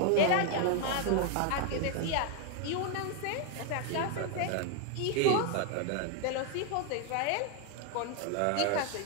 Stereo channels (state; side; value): different; both; correlation 0.00